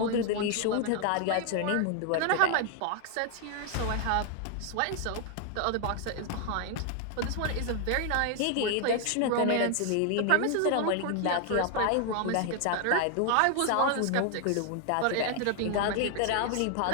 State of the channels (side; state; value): both; different; correlation 0.00